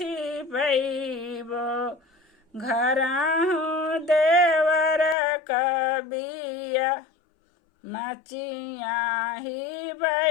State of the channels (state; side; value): drops out; right; at 5.2 s